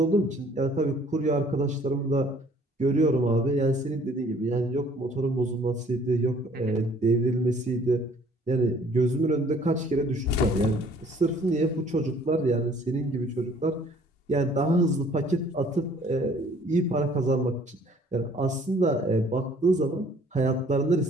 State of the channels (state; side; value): normal; both; correlation 0.57